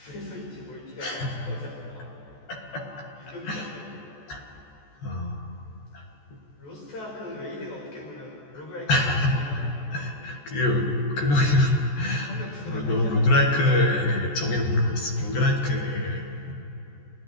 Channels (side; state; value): right; late; 14 ms